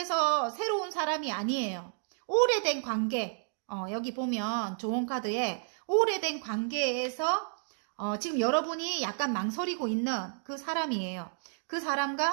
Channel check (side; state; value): left; silent; digital silence